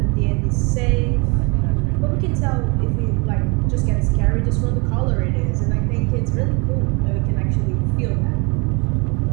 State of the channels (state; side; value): quieter; left; 29.9 dB